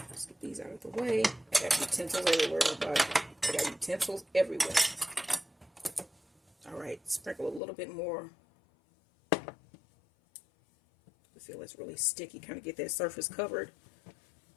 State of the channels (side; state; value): right; drops out; at 7.6 s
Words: Let's get these out of the way. I got utensils everywhere, everybody. I got utensils everywhere. All right, sprinkle a little bit more. I feel it's really sticky. Kind of get that surface covered.